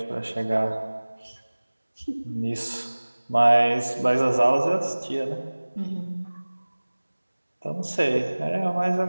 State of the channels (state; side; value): inverted; both; correlation -1.00